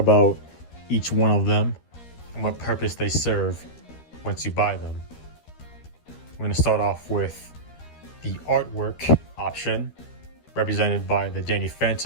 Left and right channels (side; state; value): right; late; 13 ms